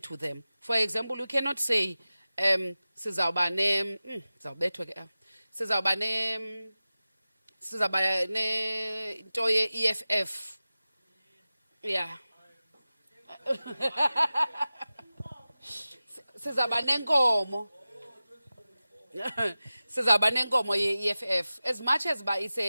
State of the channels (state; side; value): inverted; both; correlation -0.95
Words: to them. For example, you cannot say sizawuba ne into ye-EFF. Yeah. Sizawuba nenkomo. Sizawuba nenkomo ye-EFF. As much as it's